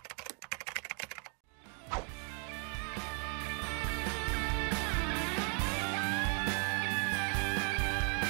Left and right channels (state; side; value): quieter; left; 39.8 dB